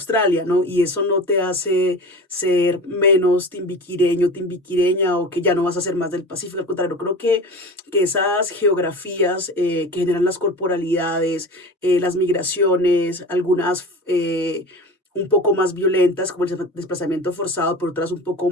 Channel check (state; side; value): normal; both; correlation 0.34